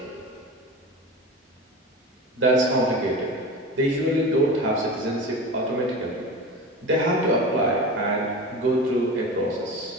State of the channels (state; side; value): normal; both; correlation 0.30